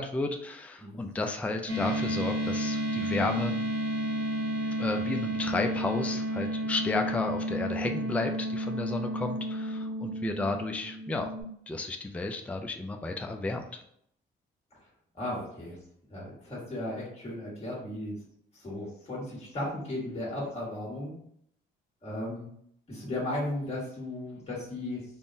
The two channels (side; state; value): both; normal; correlation 0.48